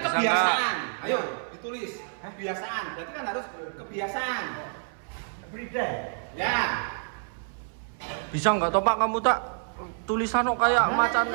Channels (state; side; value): silent; left; 59 dB below the other